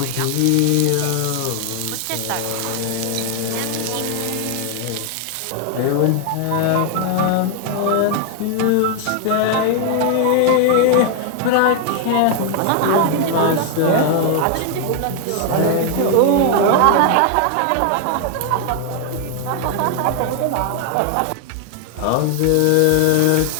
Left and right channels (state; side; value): different; both; correlation 0.00